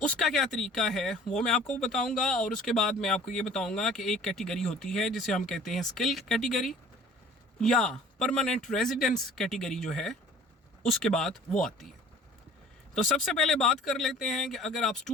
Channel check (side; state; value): both; normal; correlation 0.49